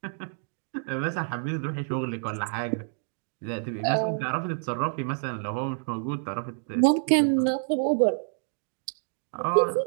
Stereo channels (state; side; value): silent; left; digital silence